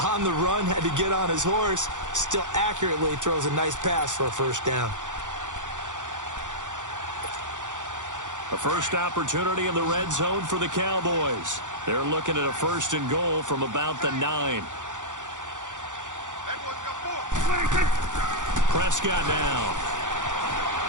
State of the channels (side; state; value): left; late; 0.86 ms